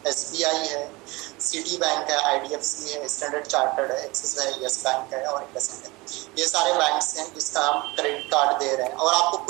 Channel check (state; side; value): quieter; left; 23.1 dB